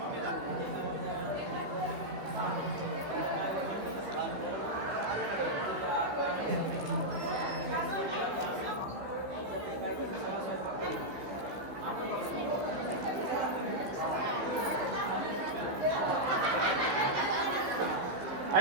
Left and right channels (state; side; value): late; left; 15 ms